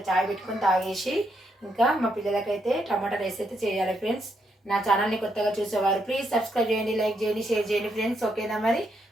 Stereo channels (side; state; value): both; normal; correlation 0.78